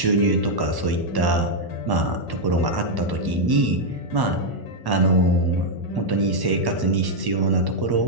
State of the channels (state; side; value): late; left; 1.1 ms